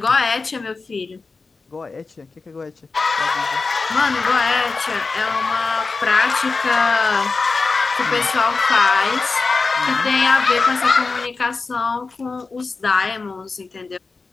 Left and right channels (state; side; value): quieter; right; 4.1 dB